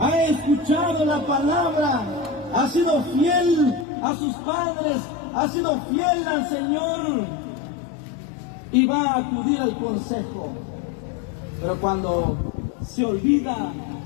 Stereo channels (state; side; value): drops out; right; at 3.9 s